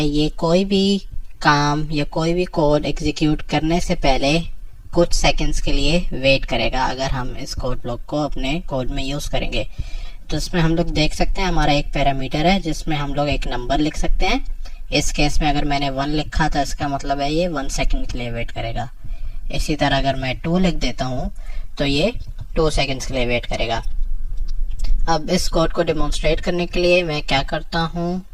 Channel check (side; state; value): both; identical; correlation 1.00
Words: ये कोई भी काम या कोई भी कोड एग्जीक्यूट करने से पहले कुछ सेकंड्स के लिए वेट करेगा अगर हम इस कोड ब्लॉक को अपने कोड में यूज़ करेंगे। तो इसमें हम लोग देख सकते हैं हमारा एक पैरामीटर है जिसमें हम लोग एक नंबर लिख सकते हैं। इस केस में अगर मैंने 1 लिखा था इसका मतलब है ये 1 सेकंड के लिए वेट करेगा। इसी तरह अगर मैं 2 लिख देता हूँ तो ये 2 सेकंड्स के लिए वेट करेगा। अब इस कोड को डेमोन्स्ट्रेट करने के लिए मैं क्या करता हूँ,